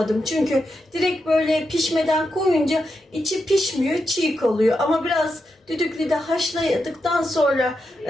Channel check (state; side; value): normal; both; correlation 0.86